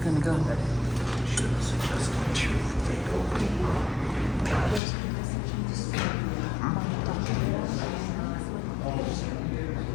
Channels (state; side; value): drops out; right; at 4.8 s